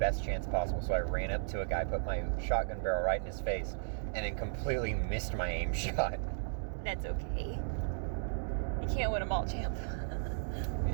chance possible, so I ran up to a guy, put my shotgun barrel right in his face, and then completely missed my aim shot. That's okay. You can't win them all, champ.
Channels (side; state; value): left; silent; digital silence